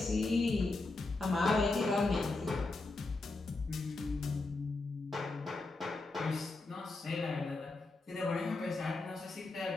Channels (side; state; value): right; quieter; 3.3 dB